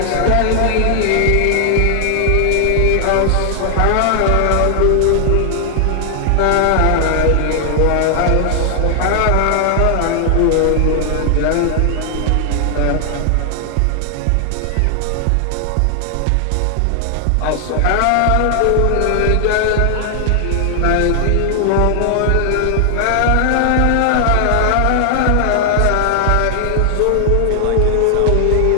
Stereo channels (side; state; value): both; different; correlation 0.00